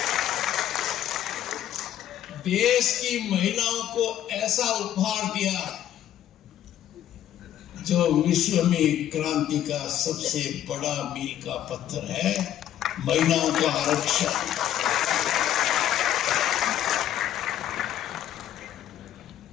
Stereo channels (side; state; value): right; quieter; 11.5 dB